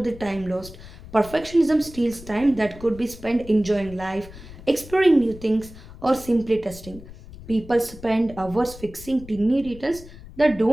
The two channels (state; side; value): noise; left; rumble, 17 dB below the sound